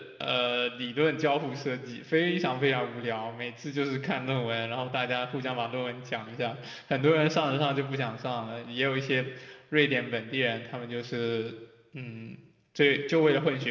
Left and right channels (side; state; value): both; identical; correlation 1.00